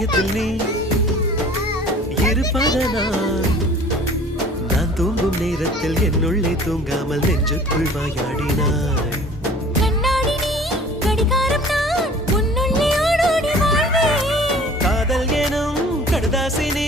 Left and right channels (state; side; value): normal; both; correlation 0.48